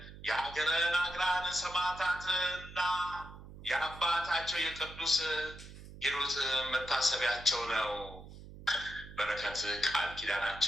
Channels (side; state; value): right; noise; hum, 15 dB below the sound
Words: የሀገረ ናግራን ሰማዕታትና የአባታቸው የቅዱስ ሂሩት መታሰቢያቸው ነው። በረከት ቃል